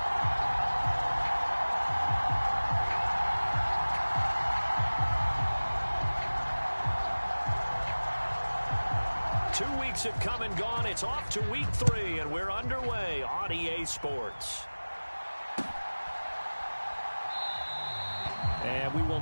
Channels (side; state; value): both; inverted; correlation -1.00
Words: Have come and gone. It's off to week 3, and we're underway on EA Sports. And we